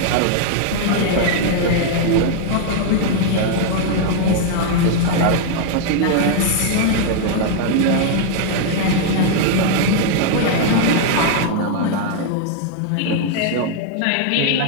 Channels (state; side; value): different; both; correlation 0.00